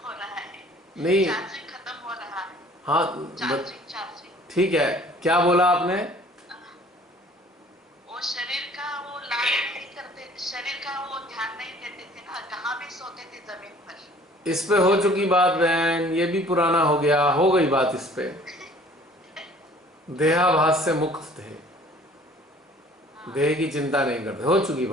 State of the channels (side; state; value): both; normal; correlation 0.52